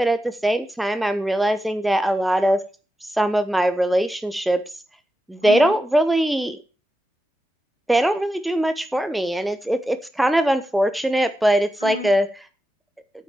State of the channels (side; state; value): both; normal; correlation 0.90